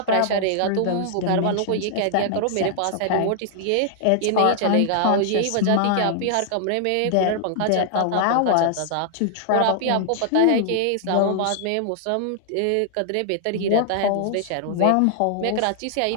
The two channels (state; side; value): different; both; correlation -0.01